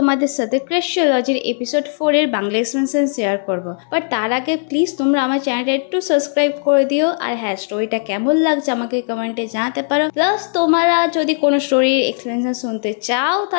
সাথে ক্রাশিওলজির এপিসোড 4 এর বাংলা এক্সপ্লেনেশন শেয়ার করব। বাট তার আগে প্লিজ তোমরা আমার চ্যানেলটা একটু সাবস্ক্রাইব করে দিও, আর হ্যাঁ, স্টোরিটা কেমন লাগছে আমাকে কমেন্টে জানাতে পারো। প্লাস তোমরা যদি কোনো স্টোরির এক্সপ্লেনেশন শুনতে চাও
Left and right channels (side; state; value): right; silent; digital silence